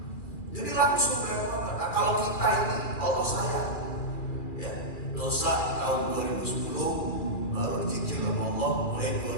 Jadi langsung nah, kalau kita ini Allah sayang, ya, dosa tahun 2010 baru dicicil sama Allah, mulai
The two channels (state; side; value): late; right; 2.4 ms